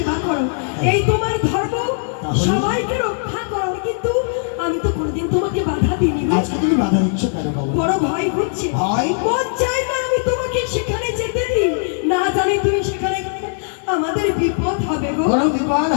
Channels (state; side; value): silent; right; digital silence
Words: করো, এই তোমার ধর্ম, সবাইকে রক্ষা করো। কিন্তু আমি তো কোনোদিন তোমাকে বাধা দিইনি গো। আজকে তুমি বাধা দিচ্ছ কেন বাবা? বড় ভয় হচ্ছে। ভয়? মন চাই না আমি তোমাকে সেখানে যেতে দিই, না জানি তুমি সেখানে গেলে আমাদের বিপদ হবে গো। কোনো বিপদ